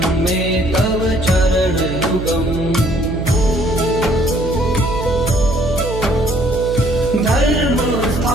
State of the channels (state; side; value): noise; right; hum, 7 dB below the sound